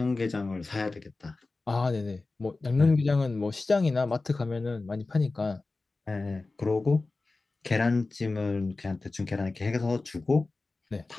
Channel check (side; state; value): right; quieter; 3.5 dB